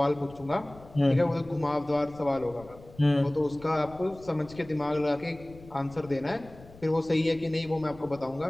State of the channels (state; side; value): noise; left; rumble, 21 dB below the sound